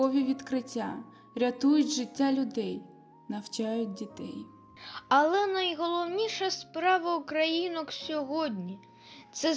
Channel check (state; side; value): identical; both; correlation 1.00